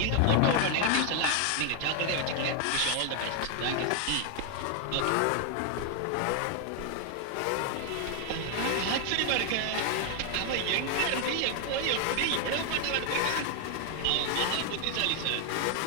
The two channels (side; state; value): both; different; correlation 0.01